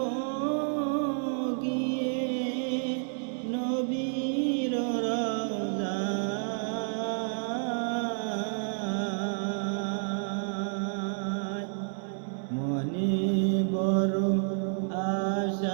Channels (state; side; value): silent; left; 58 dB below the other